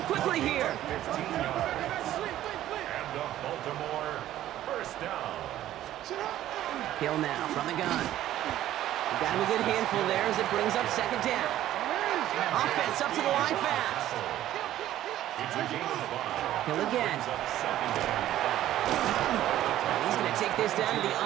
quickly here. And the Baltimore first down. Hill now from the gun. Got him a good handful there as it brings up second down. Offense up to the line fast. It's a gain of 5. Hill again. Brings up second down. And he's going to take this down to the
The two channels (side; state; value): left; quieter; 13.1 dB